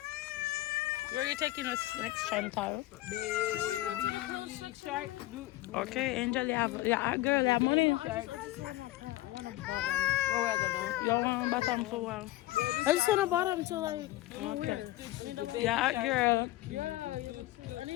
Where are you taking us next, Chantal? Okay, Angel, you have girl, you have money. Where we gonna? You want bottom so well? I just want a bottom to like. Okay. Yeah, girl. Yeah, I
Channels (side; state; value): right; quieter; 17.0 dB